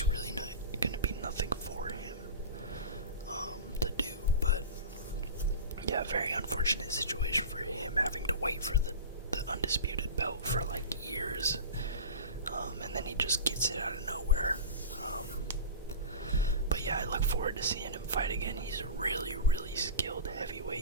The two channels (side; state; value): both; inverted; correlation -0.31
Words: really not going to be nothing for him to do. But yeah, very unfortunate situation for him, having to wait for the undisputed belt for like years, and then he just gets it out of nowhere. But yeah, I look forward to seeing him fight again. He's a really, really skilled